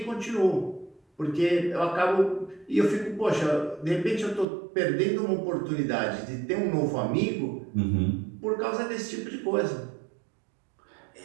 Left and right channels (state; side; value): drops out; left; at 4.5 s